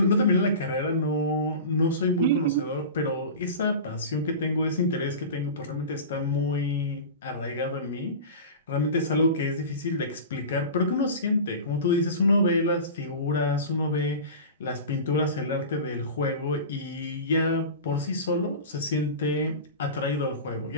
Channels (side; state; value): both; inverted; correlation -0.31